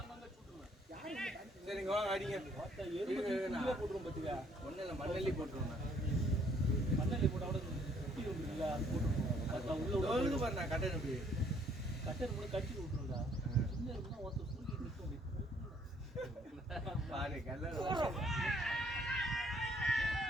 சரிங்க வாங்க அடிங்க. போட்டா எருமை போட்டுரும் பாத்துக்க ஒன்னும் இல்லை மண்ணெல்லி போட்டுருவேன். மண்ணெல்லி போட்டா கூட குட்டி இல்ல அது போட்டுரும் அதுல உள்ள டோலுக்கு பாரு நான் கட்டேன் அப்படி. கட்டர் கூட கட்டி விட்டுருடா சின்ன இருக்குன்னா ஒருத்தர் சூரிய நிக்கும் பாரு கல்லர்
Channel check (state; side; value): normal; both; correlation 0.64